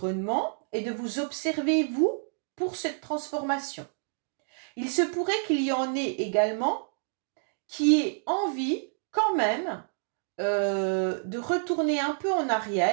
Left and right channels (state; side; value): silent; left; digital silence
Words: et de vous observer, vous, pour cette transformation. Il se pourrait qu'il y en ait également qui aient envie, quand même, de retourner un peu en